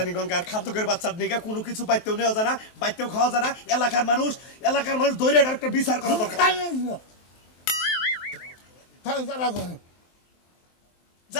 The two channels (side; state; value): right; late; 23 ms